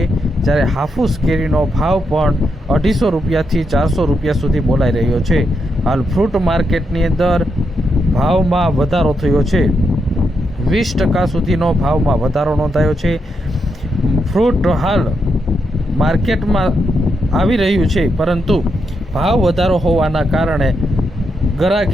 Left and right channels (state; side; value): normal; both; correlation 0.82